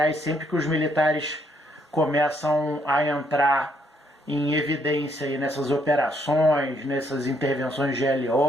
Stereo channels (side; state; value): both; normal; correlation 0.72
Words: sempre que os militares começam a entrar em evidência aí nessas operações, nessas intervenções de